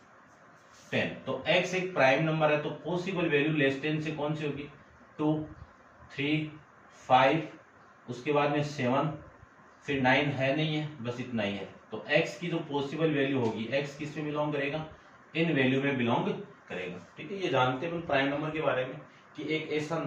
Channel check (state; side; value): identical; both; correlation 1.00